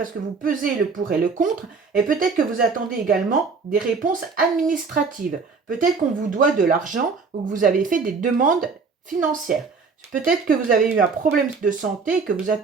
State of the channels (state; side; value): quieter; left; 4.8 dB